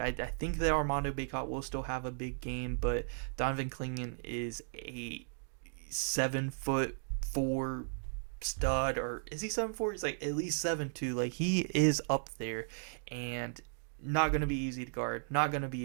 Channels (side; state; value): left; silent; digital silence